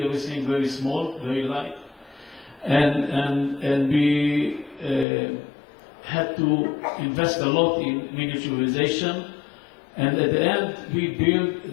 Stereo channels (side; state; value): right; drops out; at 5.1 s